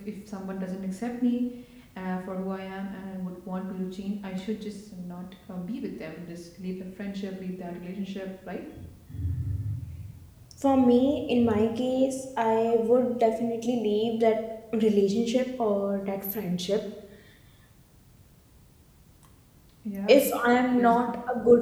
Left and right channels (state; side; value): identical; both; correlation 1.00